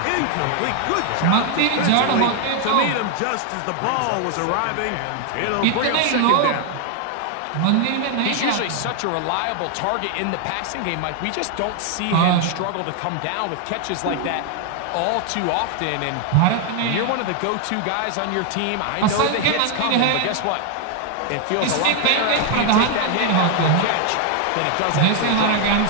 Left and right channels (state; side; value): different; both; correlation 0.01